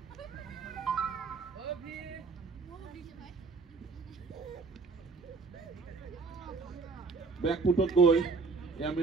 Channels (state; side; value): quieter; left; 4.4 dB